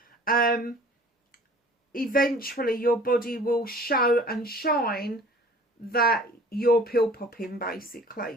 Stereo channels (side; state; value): both; normal; correlation 0.48